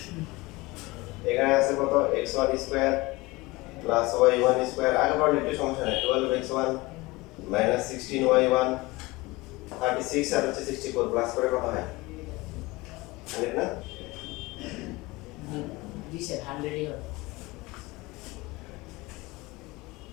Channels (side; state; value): right; quieter; 22.2 dB